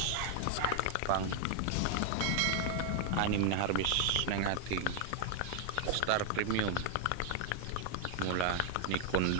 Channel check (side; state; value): both; different; correlation 0.00